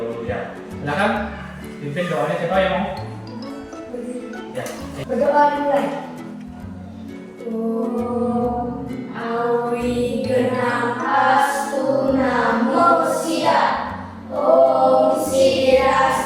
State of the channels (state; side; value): identical; both; correlation 1.00